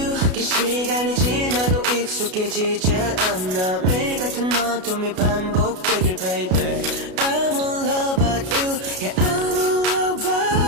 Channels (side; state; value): left; late; 33 ms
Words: 긴 시간이 지나도 익숙해지지 않아. 매일 같은 어둠이 반복되길 baby. I'm in love about you. Yeah, I'm in love